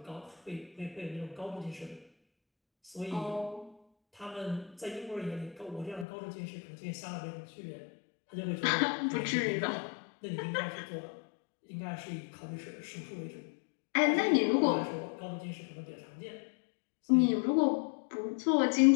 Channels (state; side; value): drops out; right; at 6.1 s